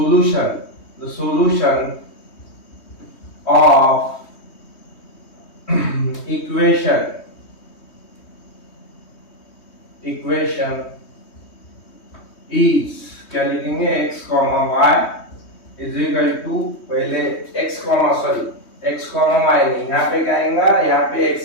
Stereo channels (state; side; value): late; right; 3.2 ms